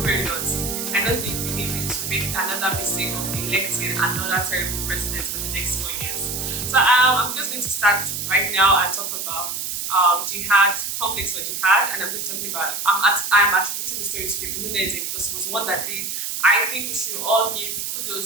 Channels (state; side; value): noise; right; hiss, 3 dB below the sound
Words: very lots. I don't think we need to make another mistake of electing another terrible president for the next 4 years. So I'm just going to start right now and talk about jihad, conflicts for jihad, and I'm going to talk about, I'm attributing the story to David Hunedi because it was one that did. I think we should all give